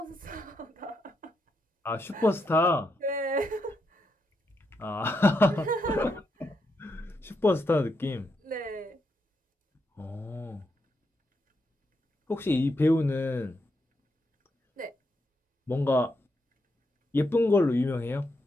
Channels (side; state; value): both; normal; correlation 0.81